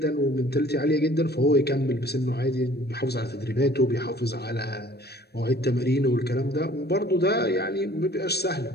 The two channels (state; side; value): late; right; 0.47 ms